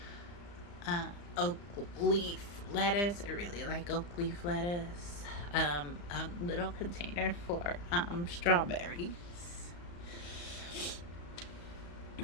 oak leaf lettuce. I really like oak leaf lettuce. A little container for strawberries.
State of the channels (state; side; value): late; right; 35 ms